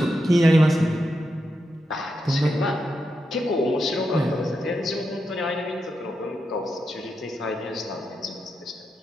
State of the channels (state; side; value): normal; both; correlation 0.86